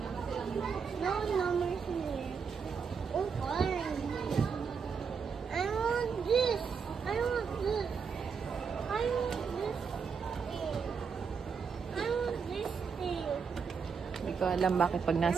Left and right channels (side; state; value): left; quieter; 6.0 dB